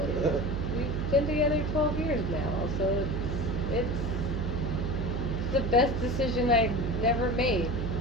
And we've been together 12 years now, so it's the best decision I never made.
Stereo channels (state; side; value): noise; right; hum, 1 dB below the sound